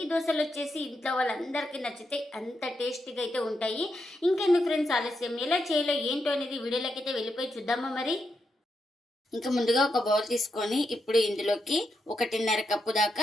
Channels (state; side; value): normal; both; correlation 0.84